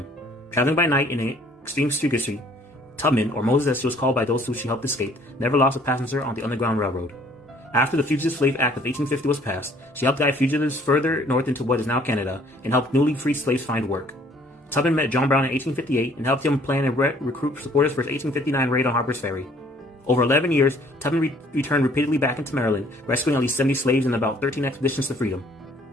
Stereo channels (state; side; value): normal; both; correlation 0.59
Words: Traveling by night in an extreme secrecy, Tubman, or Moses as she was called by those who she helped escape, never lost a passenger on the Underground Railroad. After the Fugitive Slave Act of 1850 was passed, she helped guide fugitives further north into what is now Canada and helped newly freed slaves find work. Tubman met John Brown in 1858 and helped him plan and recruit supporters for his 1859 raid on Harper's Ferry. Over 11 years, Tubman returned repeatedly back into Maryland, rescuing at least 70 slaves in about 13 expeditions to freedom.